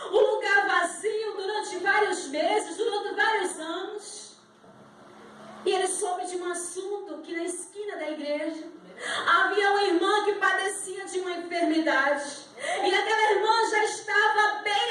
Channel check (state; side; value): identical; both; correlation 1.00